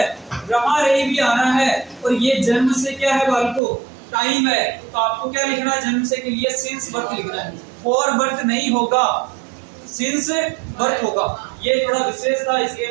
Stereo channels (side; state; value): left; drops out; at 3.6 s